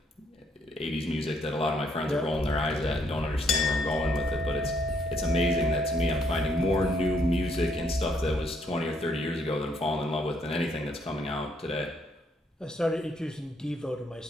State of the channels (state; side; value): normal; both; correlation 0.71